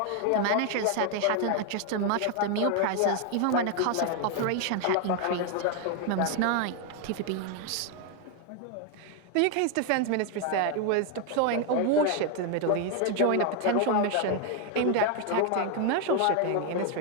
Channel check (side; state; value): both; different; correlation 0.01